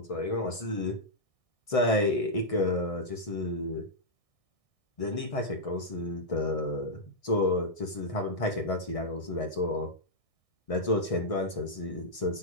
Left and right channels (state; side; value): late; right; 1.6 ms